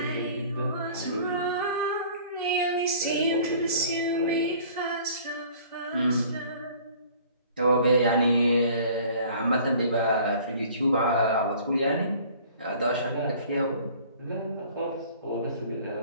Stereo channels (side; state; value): both; inverted; correlation -0.51